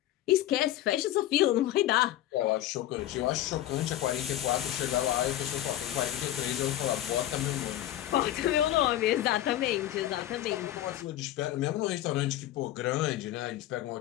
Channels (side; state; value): right; quieter; 13.6 dB